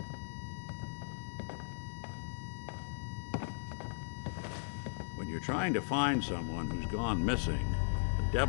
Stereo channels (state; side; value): silent; right; digital silence